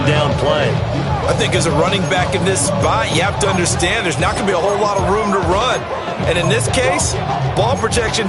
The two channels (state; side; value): identical; both; correlation 1.00